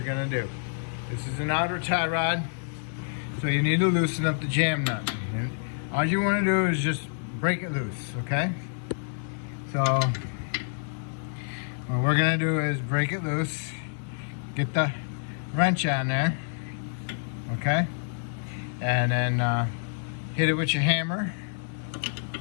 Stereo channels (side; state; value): right; silent; 59 dB below the other